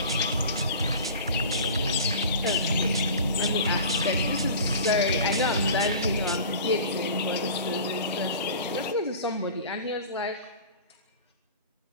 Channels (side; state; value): both; inverted; correlation -0.39